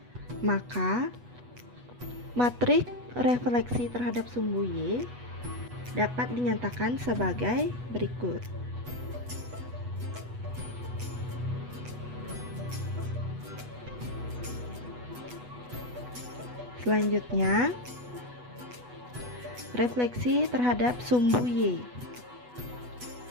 Maka matriks refleksi terhadap sumbu Y dapat dinyatakan sebagai berikut. Selanjutnya, refleksi terhadap sumbu Y.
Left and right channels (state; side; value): late; left; 8.2 ms